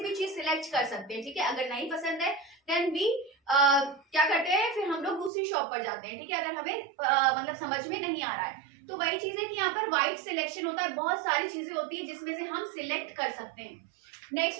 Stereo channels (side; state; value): left; drops out; at 5.3 s